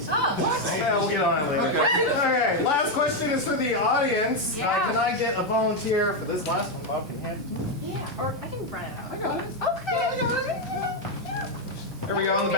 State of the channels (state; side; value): normal; both; correlation 0.04